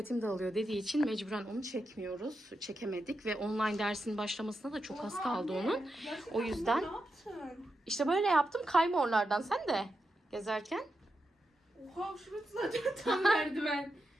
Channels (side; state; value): both; normal; correlation 0.87